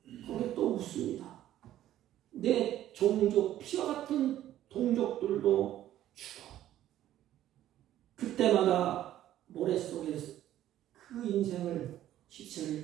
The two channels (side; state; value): left; quieter; 12.7 dB